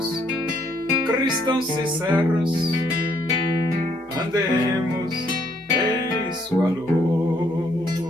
cristãos sinceros, andemos em sua luz.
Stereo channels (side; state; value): both; normal; correlation 0.69